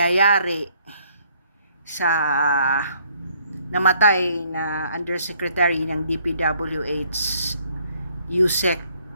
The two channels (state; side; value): inverted; both; correlation -0.65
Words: sa namatay na Undersecretary ng DPWH, Yusek